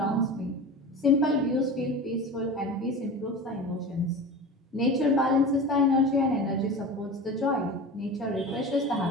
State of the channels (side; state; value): both; normal; correlation 0.32